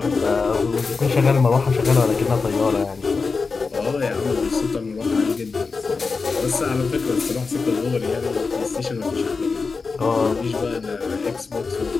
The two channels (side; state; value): right; quieter; 4.5 dB